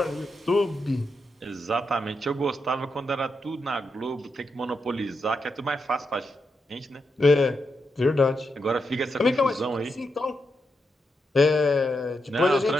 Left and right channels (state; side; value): normal; both; correlation 0.84